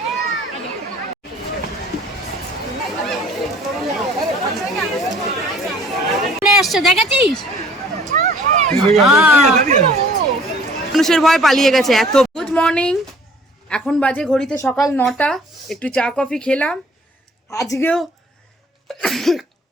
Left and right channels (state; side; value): normal; both; correlation 0.54